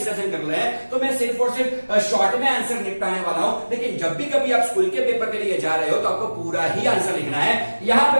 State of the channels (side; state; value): both; inverted; correlation -1.00